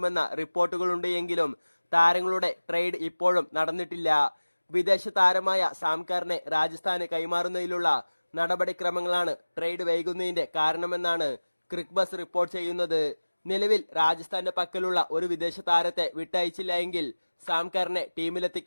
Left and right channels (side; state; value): both; inverted; correlation -1.00